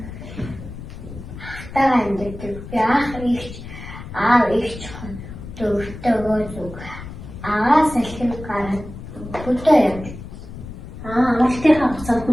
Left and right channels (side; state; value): left; noise; rumble, 12 dB below the sound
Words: Ахтайгаа амьдэрдэг. Би аав эгч дөрөвтэйгөө зүг. Агаас салхин гараад хөдөө явдаг. Амралтынхаа хугацаанд